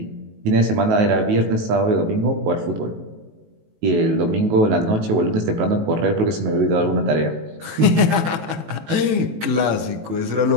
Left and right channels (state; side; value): late; left; 18 ms